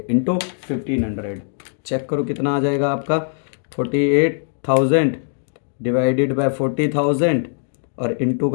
इंटू 1500। चेक करो कितना आ जाएगा आपका, 48,000 डिवाइडेड बाय 40,000 और इंटू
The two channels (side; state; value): right; silent; digital silence